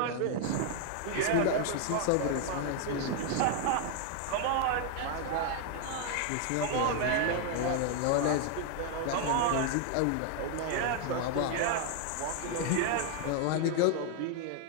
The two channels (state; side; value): different; both; correlation 0.00